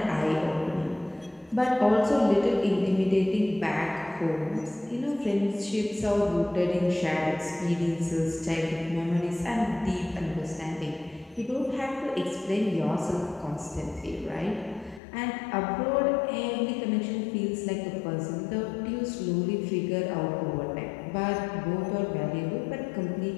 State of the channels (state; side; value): drops out; right; at 15.0 s